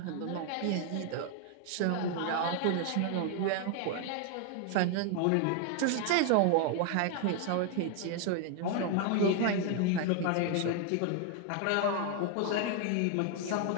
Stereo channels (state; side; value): different; both; correlation 0.00